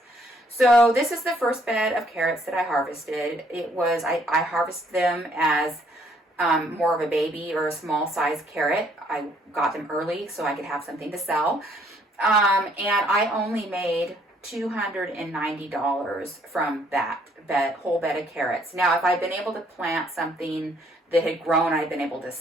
So this is the first bed of carrots that I harvested. I harvested them as more of a baby or a small size carrot. I got them early so I could have something to sell. And I only made $290 from that whole bed of carrots. Now, if I'd been able to plant something that had grown, I'd been able to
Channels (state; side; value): normal; both; correlation 0.66